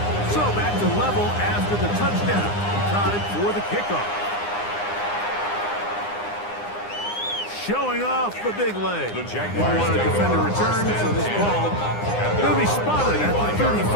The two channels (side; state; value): right; late; 9.8 ms